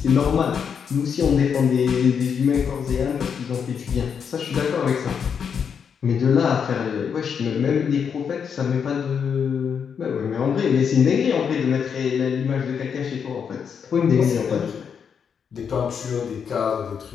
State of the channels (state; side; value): quieter; right; 7.0 dB